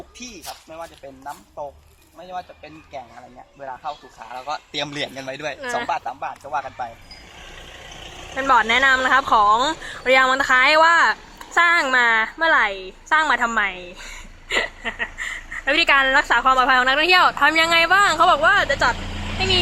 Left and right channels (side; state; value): both; identical; correlation 1.00